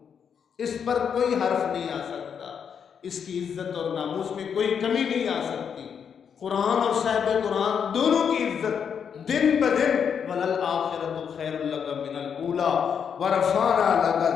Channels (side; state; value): right; quieter; 7.3 dB